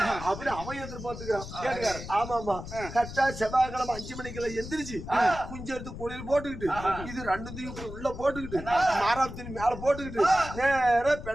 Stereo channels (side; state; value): left; noise; rumble, 10 dB below the sound